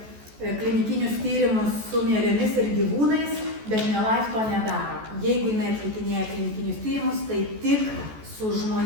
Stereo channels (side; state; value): left; late; 14 ms